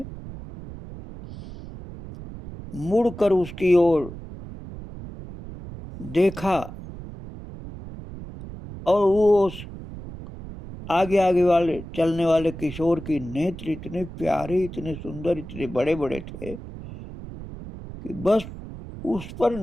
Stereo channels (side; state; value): right; noise; rumble, 12 dB below the sound